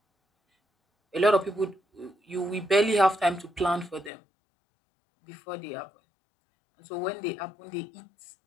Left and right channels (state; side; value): drops out; right; at 4.1 s